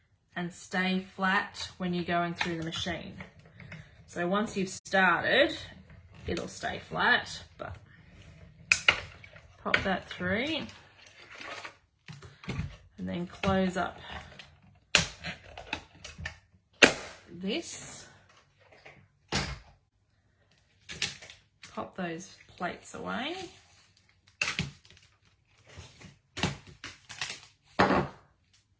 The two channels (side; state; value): both; identical; correlation 1.00